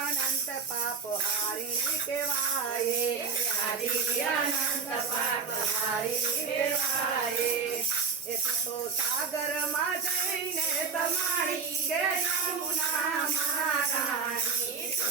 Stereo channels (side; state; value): left; quieter; 5.5 dB